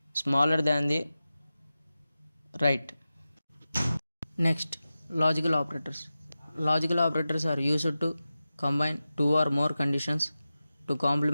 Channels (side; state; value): both; inverted; correlation -0.94